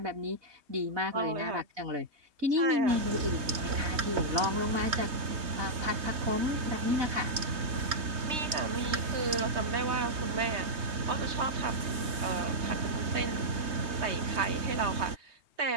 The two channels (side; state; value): left; late; 3.2 ms